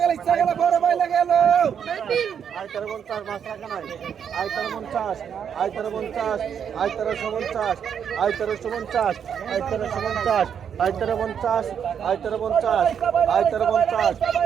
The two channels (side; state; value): left; quieter; 8.0 dB